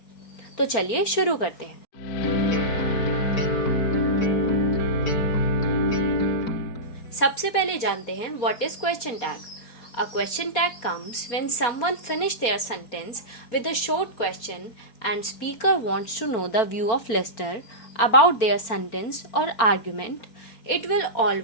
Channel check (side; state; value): right; late; 4.2 ms